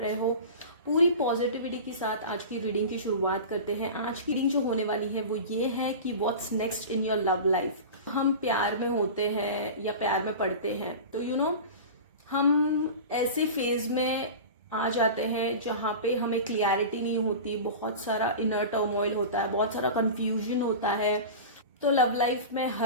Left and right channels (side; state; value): both; inverted; correlation -0.31